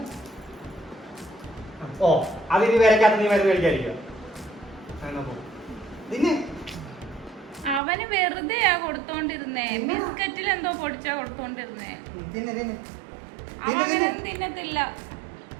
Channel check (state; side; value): drops out; left; at 7.8 s